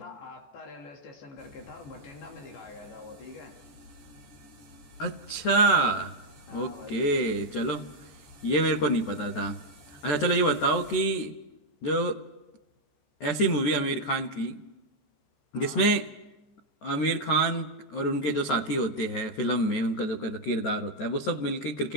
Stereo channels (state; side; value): late; right; 14 ms